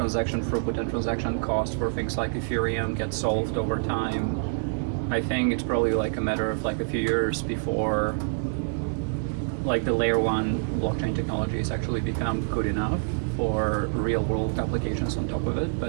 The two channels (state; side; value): silent; left; digital silence